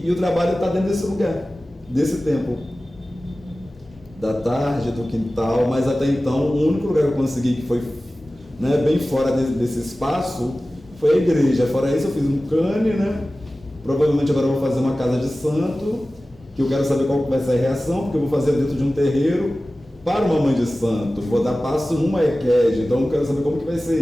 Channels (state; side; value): normal; both; correlation 0.96